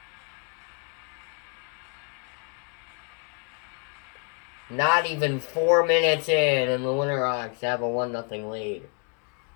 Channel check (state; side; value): quieter; right; 39.3 dB